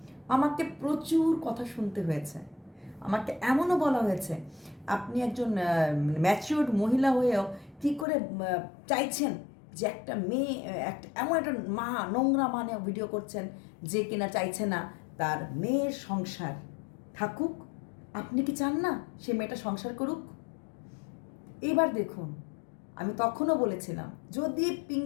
আমাকে প্রচুর কথা শুনতে হয়েছে। আমাকে এমনও বলা হয়েছে, আপনি একজন ম্যাচিওর্ড মহিলা হয়েও কী করে চাইছেন যে একটা মেয়ে, একটা এমন একটা মা, নোংরা মানে ভিডিও করছেন যে কিনা চাইছে না তার মেয়ের সংসার থাকুক। আপনি কি চান না সে মেয়েটা সংসার করুক? এবার দেখুন, আমি তখনও বলেছিলাম যদি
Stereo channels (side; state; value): right; drops out; at 8.1 s